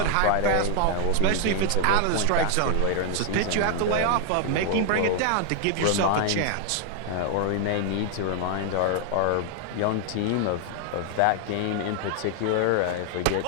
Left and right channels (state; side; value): different; both; correlation 0.00